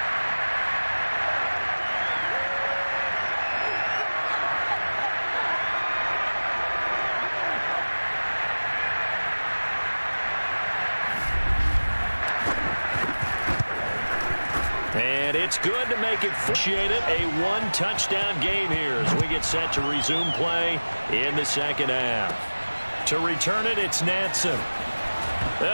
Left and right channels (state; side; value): inverted; both; correlation -1.00